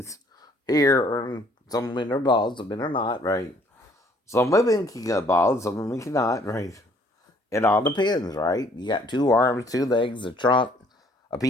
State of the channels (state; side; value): normal; both; correlation 0.61